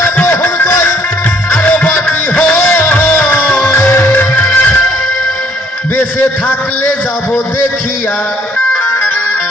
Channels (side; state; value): both; normal; correlation 0.63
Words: বেঁচে থাকলে যাব দেখিয়া।